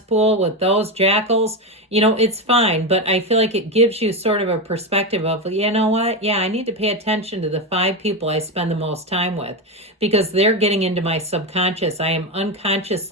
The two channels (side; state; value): both; normal; correlation 0.13